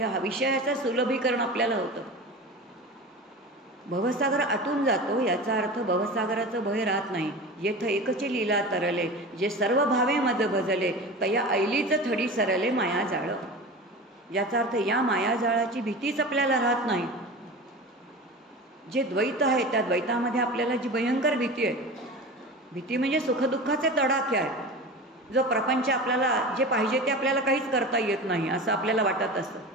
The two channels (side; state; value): both; normal; correlation 0.31